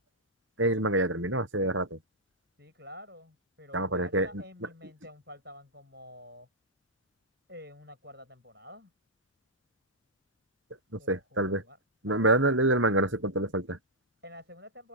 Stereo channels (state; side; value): normal; both; correlation -0.09